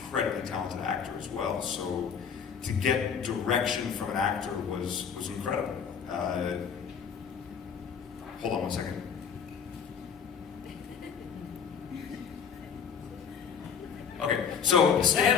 talented actor as well. So to get direction from an actor was incredible. Hold on one second. Okay, so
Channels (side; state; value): right; quieter; 6.9 dB